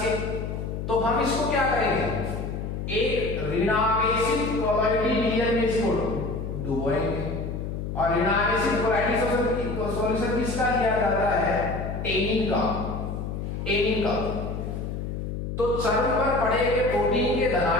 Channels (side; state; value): left; noise; hum, 5 dB below the sound